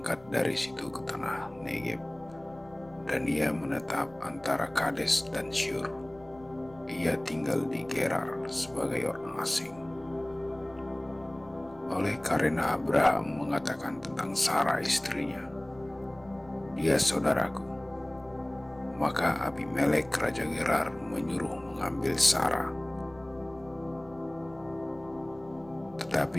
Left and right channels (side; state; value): left; noise; rumble, 25 dB below the sound